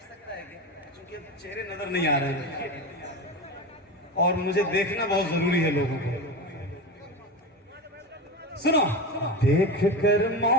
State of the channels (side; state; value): both; normal; correlation 0.23